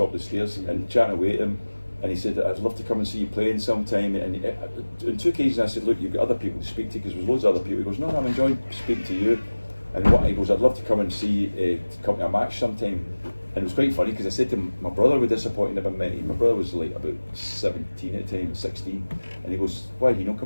of the stairs and chatting away to him. And he said, "I'd love to come and see you playing sometime." And on 2 occasions I said, "Look, you've got other people to speak to," because there's loads of other people. He goes, "No, I'm enjoying speaking to you." And he goes, "I'd love to come and see you to come to a match sometime." And it was quite funny because I said to him, my brother was disappointed about me. My brother was like about 17 at the time, 16. And he goes, "Why did he not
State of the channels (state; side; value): inverted; both; correlation -1.00